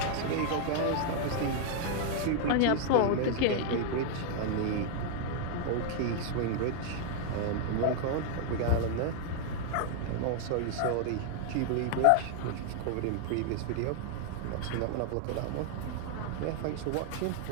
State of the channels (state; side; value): different; both; correlation 0.00